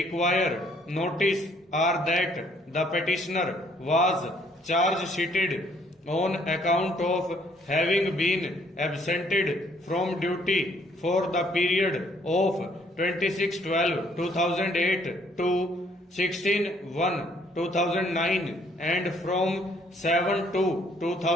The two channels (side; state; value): both; normal; correlation 0.64